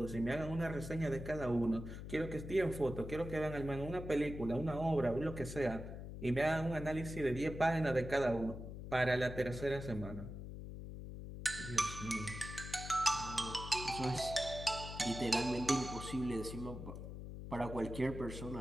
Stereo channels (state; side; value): noise; left; hum, 9 dB below the sound